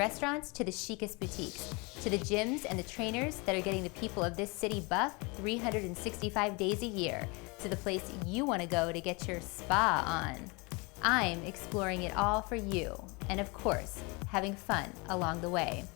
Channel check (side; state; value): right; quieter; 28.5 dB